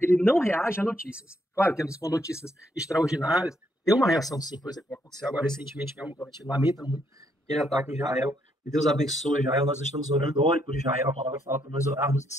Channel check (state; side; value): normal; both; correlation 0.73